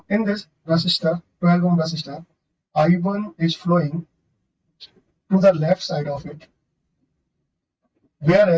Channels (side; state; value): both; identical; correlation 1.00